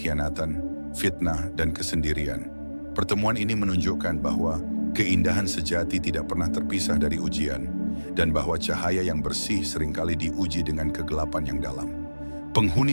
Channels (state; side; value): inverted; both; correlation -1.00